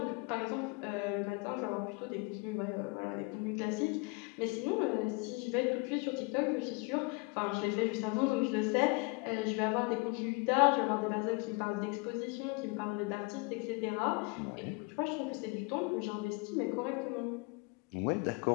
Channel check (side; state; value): right; quieter; 28.7 dB